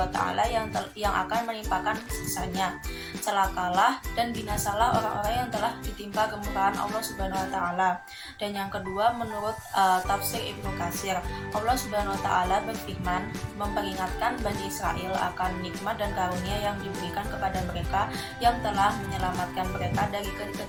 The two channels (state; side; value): identical; both; correlation 1.00